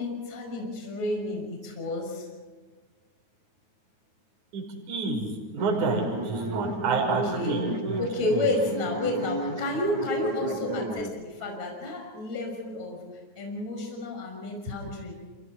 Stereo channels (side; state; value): left; late; 9.4 ms